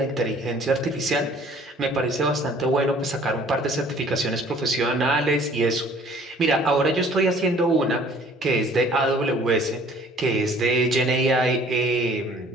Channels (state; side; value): normal; both; correlation 0.54